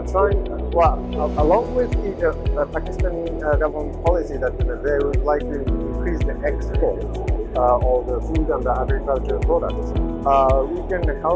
trying, along with the Pakistani government policy that they would like to increase the export of the food and the agricultural products, we can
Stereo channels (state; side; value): identical; both; correlation 1.00